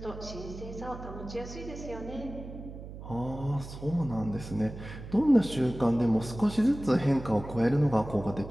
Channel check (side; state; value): right; noise; hum, 12 dB below the sound